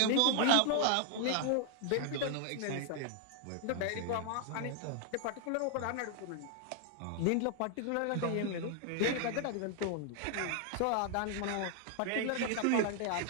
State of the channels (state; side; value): different; both; correlation 0.00